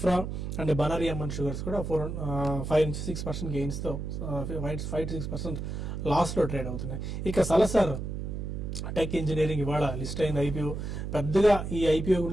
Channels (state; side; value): noise; right; hum, 5 dB below the sound